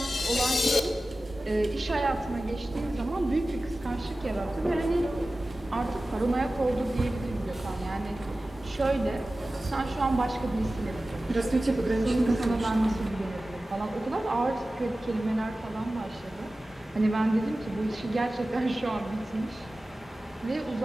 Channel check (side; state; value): both; normal; correlation 0.96